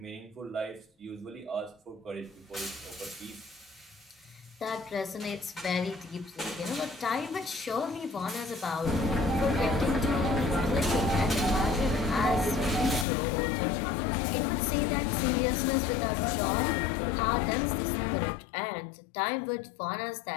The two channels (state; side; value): drops out; right; at 13.1 s